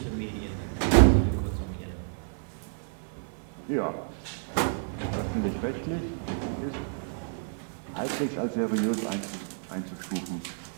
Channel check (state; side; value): silent; left; 58 dB below the other